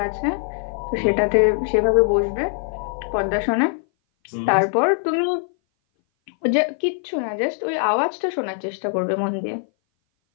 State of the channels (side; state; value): right; silent; 58 dB below the other